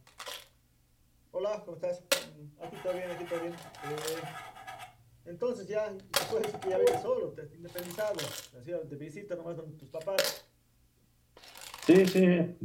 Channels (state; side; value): identical; both; correlation 1.00